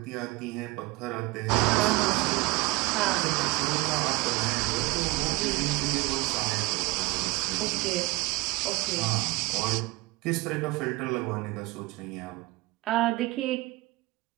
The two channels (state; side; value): quieter; left; 22.3 dB